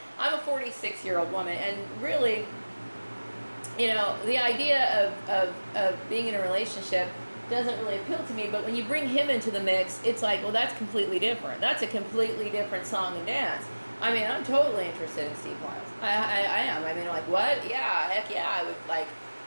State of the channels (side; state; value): both; inverted; correlation -1.00